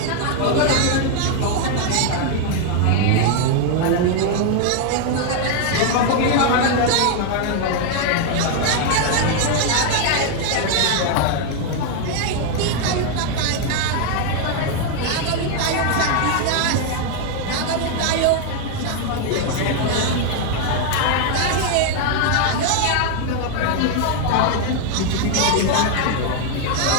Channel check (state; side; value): different; both; correlation 0.00